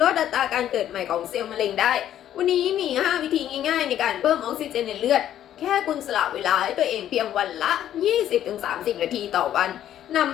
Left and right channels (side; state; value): right; quieter; 11.3 dB